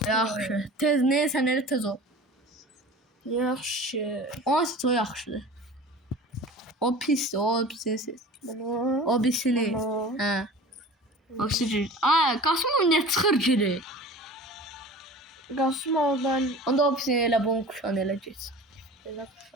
Yaxşı. Tez neysən elə tez ol. Yaxşı. O yaxşıdır. O pisdir, o pisdir. Bunu. O pisini. Bunu. Hə. O pisdir. Ay, Qasımov nə çıxır geri? Qasımovdan Onda o pisini elə bunun kuşan elə geç. belə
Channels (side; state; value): both; normal; correlation 0.39